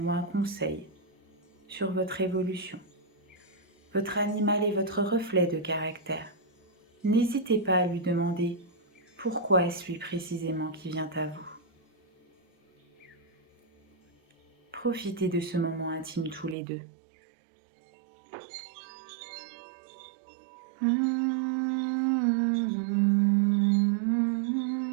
ou un conseil sur votre évolution. Votre animal est votre reflet de caractère. N'hésitez pas à lui demander pourquoi est-ce lui précisément qui vient à vous. Profitez de ce moment intime tous les deux.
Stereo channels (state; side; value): drops out; left; at 16.6 s